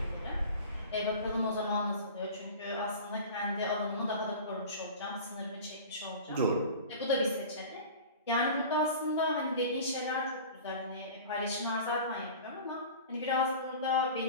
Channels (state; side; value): inverted; both; correlation -0.37